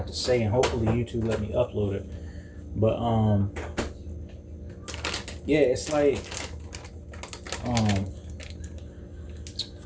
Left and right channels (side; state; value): both; identical; correlation 1.00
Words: to say, and hopefully YouTube let me upload it. But yeah, it's like